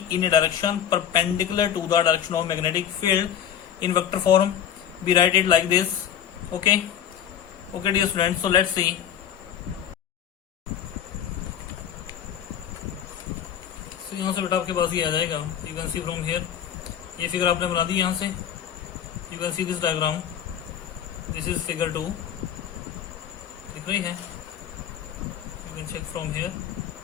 in a direction perpendicular to the direction of magnetic field. In vector form, we write it like this. Okay, dear students. So let's see. So यहाँ से बेटा आपके पास ये आ जाएगा. You can see from here. ये figure आपने बना दी यहाँ से. You can see this diagram. This is figure 2. दिख रही है? You can check from here.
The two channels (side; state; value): right; quieter; 9.5 dB